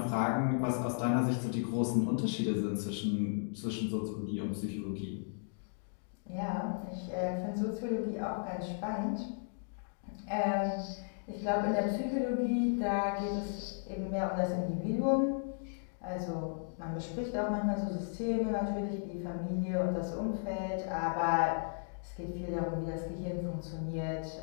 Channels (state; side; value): silent; right; digital silence